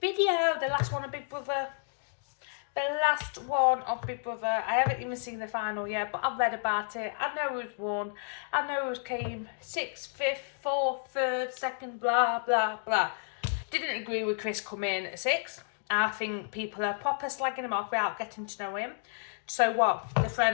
the last one of Big Brother. The last one of Big Brother. I haven't even seen the final yet, but I've read about it. I know who's won. I know who's came 6th, 5th, 4th, 3rd, 2nd, blah, blah, blah. Didn't agree with Chris coming 6th. I think people are proper slagging him off without getting to know him. So what? The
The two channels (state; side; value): silent; right; digital silence